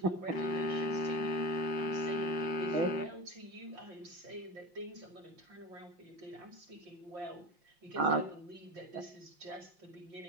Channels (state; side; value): late; left; 5.6 ms